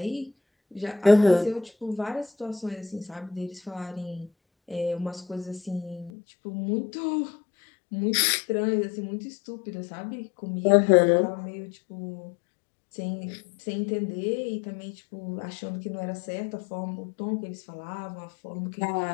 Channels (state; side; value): drops out; right; at 6.1 s